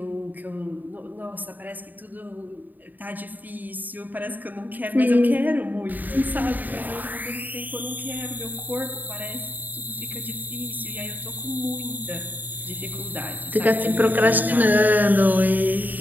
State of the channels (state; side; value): late; left; 0.086 ms